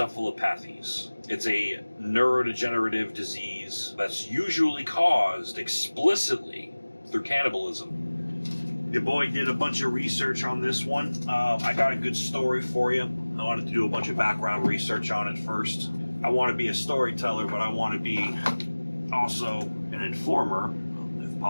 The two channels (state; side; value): inverted; both; correlation -1.00